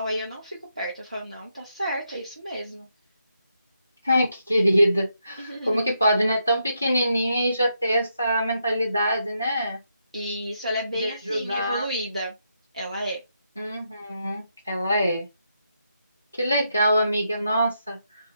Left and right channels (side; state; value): both; inverted; correlation -0.81